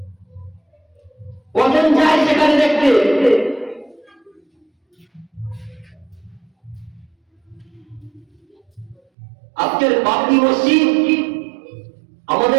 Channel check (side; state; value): left; drops out; at 9.0 s